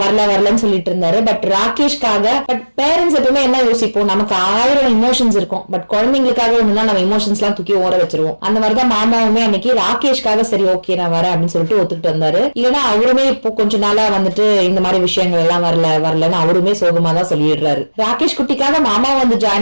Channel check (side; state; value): both; inverted; correlation -1.00